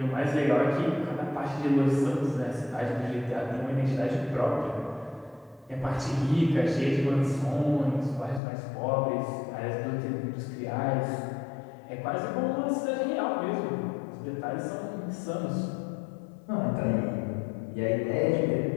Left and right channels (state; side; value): drops out; right; at 8.4 s